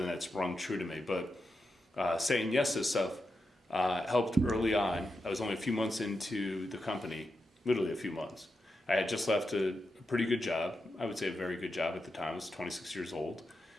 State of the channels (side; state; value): both; normal; correlation 0.87